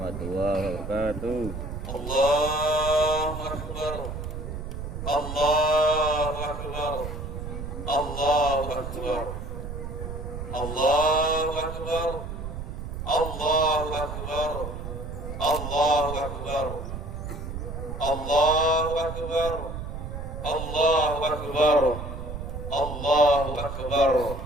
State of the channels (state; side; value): noise; right; rumble, 7 dB below the sound